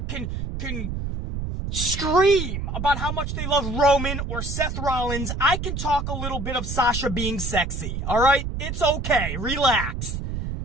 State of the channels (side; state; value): right; noise; rumble, 4 dB below the sound